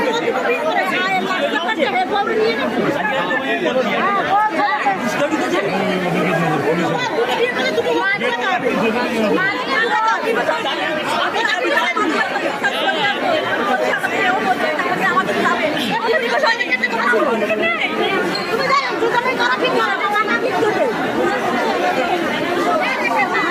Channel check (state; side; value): identical; both; correlation 1.00